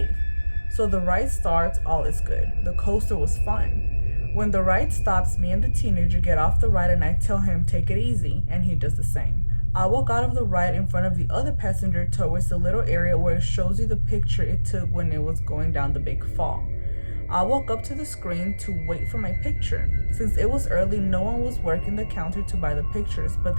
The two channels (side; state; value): both; inverted; correlation -1.00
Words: So the ride starts, all is good. The coaster was fun. When the ride stops, me and the teenager get off the ride and I tell him take it easy, and he does the same. I walk out of the ride in front of the other passenger towards the little area where it shows you the picture it took when it was going down the big fall. I walk up to the screen to wait for my picture. Since it was early, no one was working the counter to buy the pictures, but